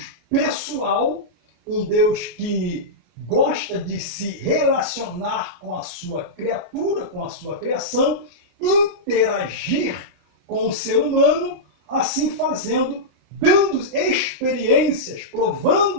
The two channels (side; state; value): left; late; 33 ms